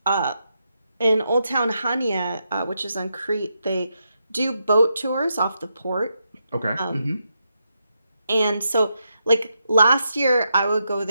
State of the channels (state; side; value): inverted; both; correlation -0.84